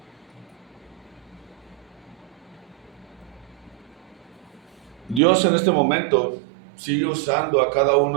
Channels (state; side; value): drops out; left; at 5.2 s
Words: Dios en este momento sigue usando a cada